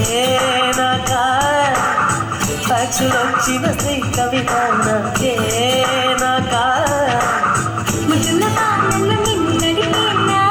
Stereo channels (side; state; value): both; identical; correlation 1.00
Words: నాకా ఫ్యాక్సులు వచ్చిన శ్రీ కవిత నాకే నాకా